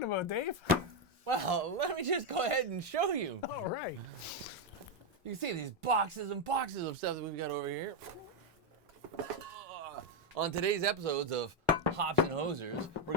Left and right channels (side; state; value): both; normal; correlation 0.05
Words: about, Dave? Well, let me just go ahead and show you. All right. You can see these boxes and boxes of stuff that we've got over here. On today's episodes of Hops and Hosers, we're